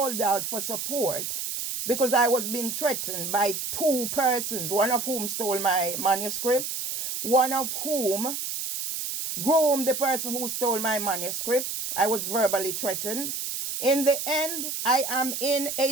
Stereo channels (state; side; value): noise; right; hiss, 4 dB below the sound